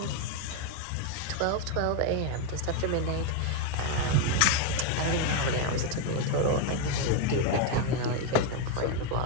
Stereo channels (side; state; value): both; different; correlation 0.02